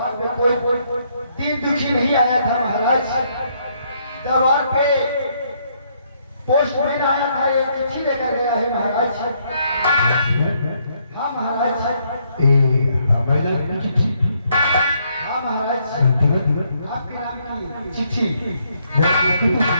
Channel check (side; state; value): both; inverted; correlation -0.72